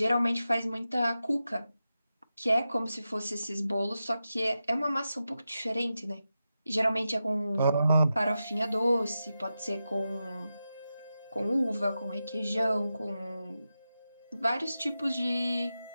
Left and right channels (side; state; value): both; inverted; correlation -0.91